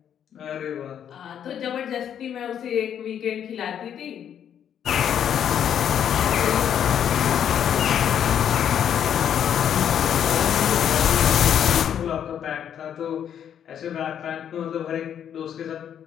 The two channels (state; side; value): quieter; right; 9.2 dB